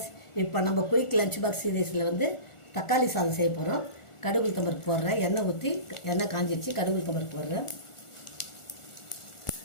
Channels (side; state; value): right; late; 1.4 ms